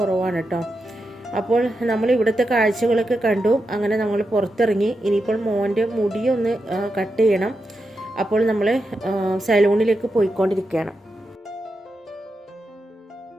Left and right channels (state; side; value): normal; both; correlation 0.88